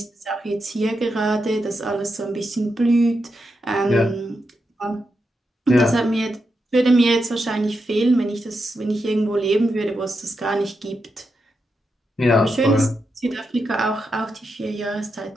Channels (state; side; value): normal; both; correlation 0.86